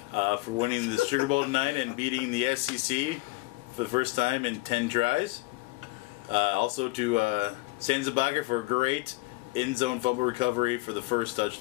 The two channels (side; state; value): right; quieter; 22.1 dB